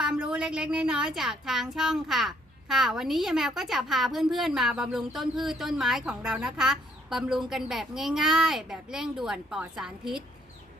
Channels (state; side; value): normal; both; correlation 0.67